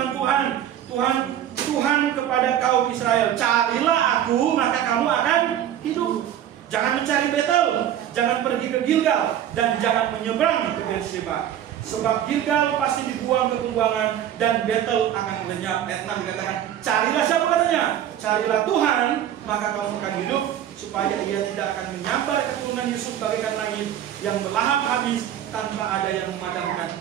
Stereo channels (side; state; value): left; quieter; 10.7 dB